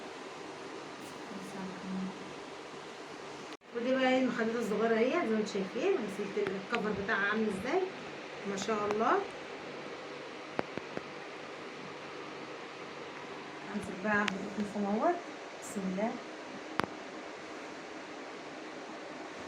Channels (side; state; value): both; identical; correlation 1.00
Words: ودي بقى المخدات الصغيره اهي، زي ما انتم شايفين. غسلت الكفر بتاعها عامل ازاي، ما شاء الله. امسك بقى القطن اهوت، بسم الله.